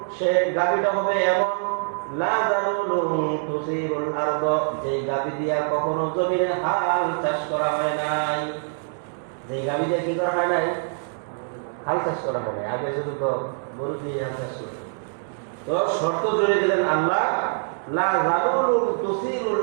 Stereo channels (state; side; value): silent; left; digital silence